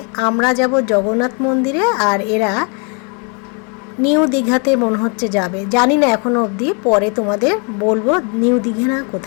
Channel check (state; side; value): quieter; right; 36.3 dB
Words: আমরা যাব জগন্নাথ মন্দিরে, আর এরা নিউ দীঘাতে মনে হচ্ছে যাবে, জানি না এখনো অবধি, পরে তোমাদের বলবো নিউ দীঘা না